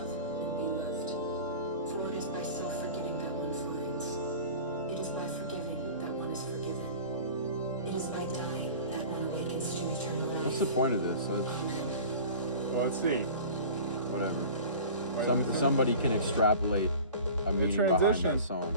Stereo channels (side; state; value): both; inverted; correlation -0.40